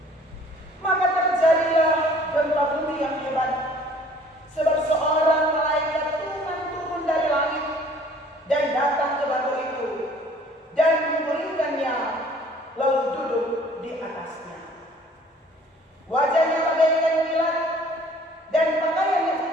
Maka terjadilah gempa bumi yang hebat, sebab seorang malaikat Tuhan turun dari langit dan datang ke batu itu dan memulihkannya, lalu duduk di atasnya. Wajahnya bagaikan kilat dan pakaiannya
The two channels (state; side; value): normal; both; correlation 0.54